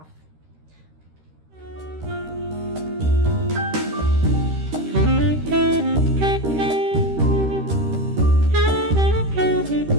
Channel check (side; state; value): left; late; 13 ms